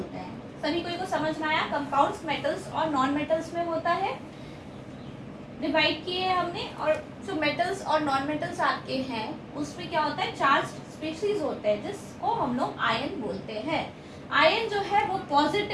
हैं। सभी कोई को समझ में आया? कंपाउंड्स मेटल्स और नॉन मेटल्स में होता है, डिवाइड किए हैं हमने। और जो मेटल्स और नॉन मेटल्स आपके हैं उसमें क्या होता है? चार्ज स्पीशीज होते हैं जिसको हम लोग आयन बोलते हैं। आयन जो है वो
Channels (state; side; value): identical; both; correlation 1.00